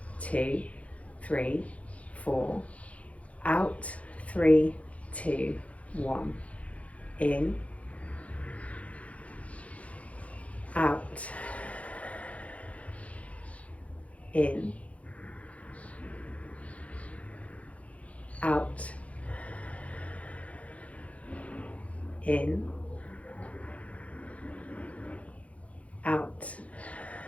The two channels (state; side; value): late; right; 0.065 ms